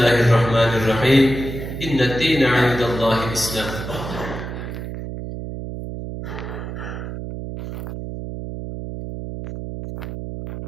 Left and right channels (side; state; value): right; noise; hum, 8 dB below the sound